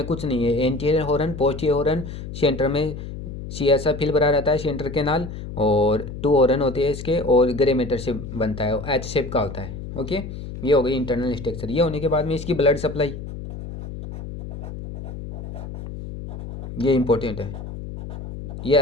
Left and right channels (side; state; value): left; noise; hum, 9 dB below the sound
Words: कुछ नहीं है, anterior horn, posterior horn, centre में सी ऐसा फिल भरा रहता है सेंटर के नाल, और 2 हॉर्न होते हैं इसके, और ग्रे मैटर से बनता है, एच शेप का होता है। ओके, ये हो गई इंटरनल स्ट्रक्चर। ये होने के बाद में इसकी ब्लड सप्लाई, ये इंपॉर्टेंट है, ये